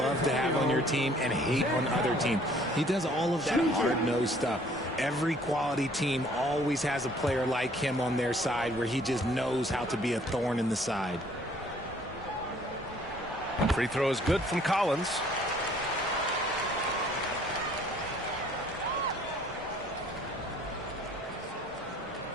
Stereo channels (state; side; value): normal; both; correlation 0.58